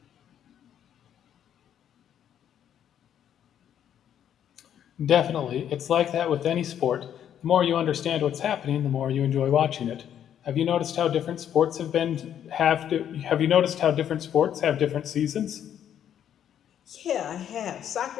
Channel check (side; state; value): right; quieter; 9.8 dB